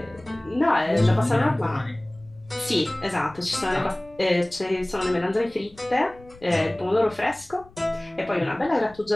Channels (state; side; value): noise; left; rumble, 25 dB below the sound